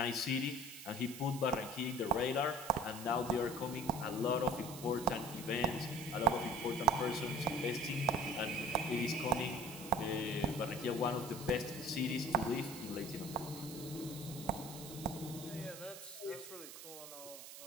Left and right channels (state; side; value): noise; right; hiss, 12 dB below the sound